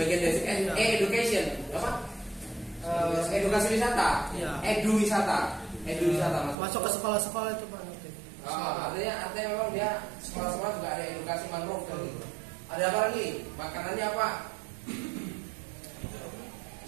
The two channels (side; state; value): left; drops out; at 6.6 s